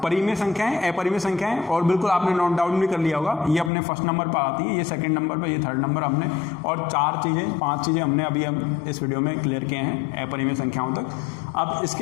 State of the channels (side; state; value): right; drops out; at 3.7 s